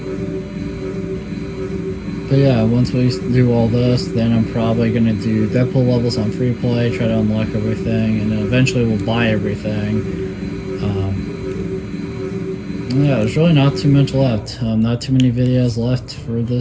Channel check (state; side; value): identical; both; correlation 1.00